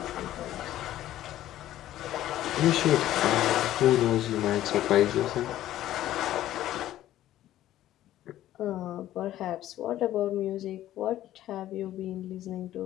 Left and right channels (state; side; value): quieter; right; 13.5 dB